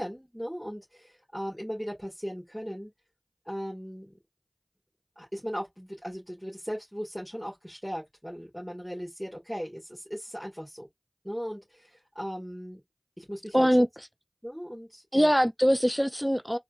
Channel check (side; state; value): both; identical; correlation 1.00